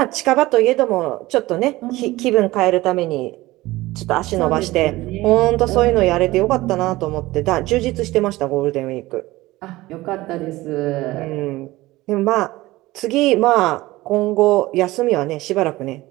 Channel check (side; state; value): left; quieter; 18.7 dB